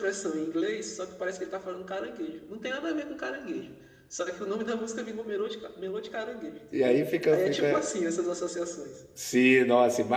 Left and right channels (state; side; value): identical; both; correlation 1.00